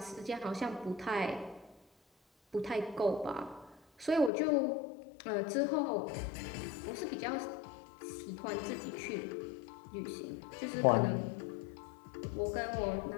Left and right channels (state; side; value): drops out; right; at 4.3 s